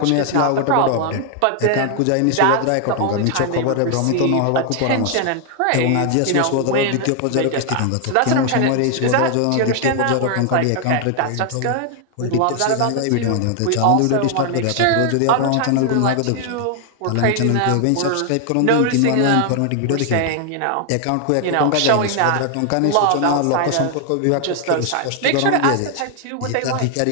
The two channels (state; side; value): different; both; correlation 0.00